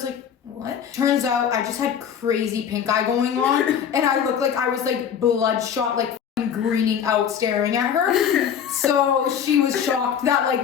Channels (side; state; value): right; quieter; 8.2 dB